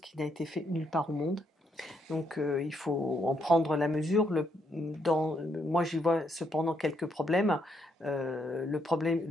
n'a été fait nulle part au monde. Donc il faut en prendre la mesure. Moi, j'y vois cependant quelques problèmes. Le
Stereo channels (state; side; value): normal; both; correlation 0.75